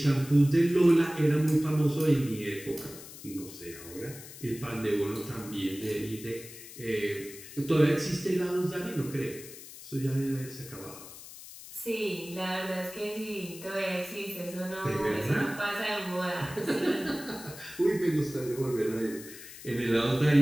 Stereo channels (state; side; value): noise; left; hiss, 15 dB below the sound